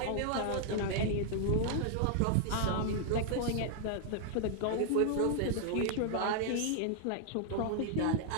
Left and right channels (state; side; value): different; both; correlation -0.01